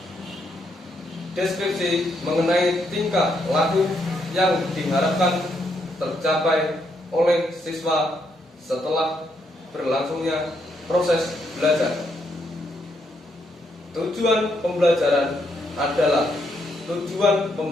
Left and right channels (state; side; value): normal; both; correlation 0.76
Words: deskripsi mengenai tingkah laku yang diharapkan tercapai oleh siswa setelah berlangsungnya proses belajar. Tujuan pembelajaran adalah tujuan